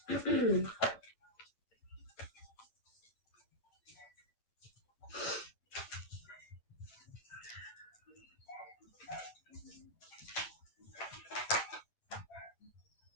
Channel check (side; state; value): right; late; 9.2 ms